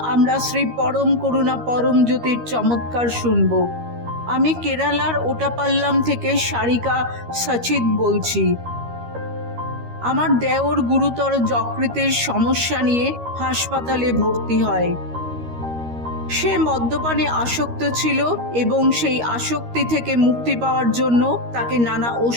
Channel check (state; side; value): late; left; 13 ms